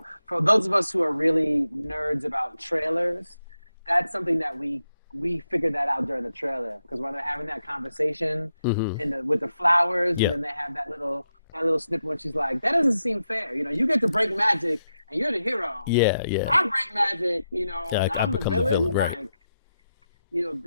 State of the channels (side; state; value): both; inverted; correlation -0.86